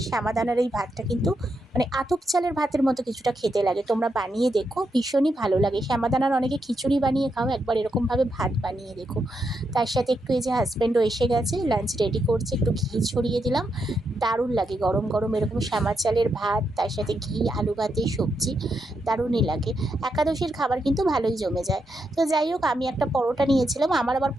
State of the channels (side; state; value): both; normal; correlation 0.82